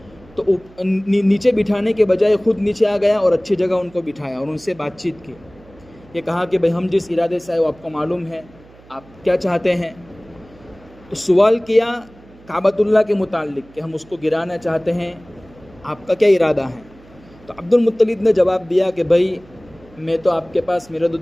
تو نیچے بٹھانے کے بجائے خود نیچے آ گیا اور اچھی جگہ ان کو بٹھایا اور ان سے بات چیت کی. یہ کہا کہ بھائی ہم جس ارادے سے آئے وہ آپ کو معلوم ہے, آپ کیا چاہتے ہیں؟ تو سوال کیا کعبۃ اللہ کے متعلق کہ ہم اس کو گرانا چاہتے ہیں, آپ کا کیا ارادہ ہے؟ تو عبد المطلب نے جواب دیا کہ بھائی میں تو آپ کے پاس میرا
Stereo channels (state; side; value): noise; right; hum, 25 dB below the sound